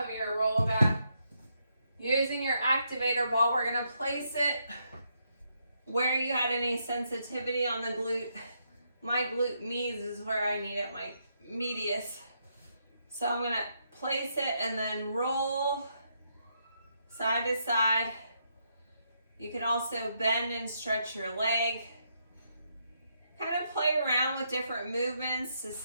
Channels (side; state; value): both; inverted; correlation -0.78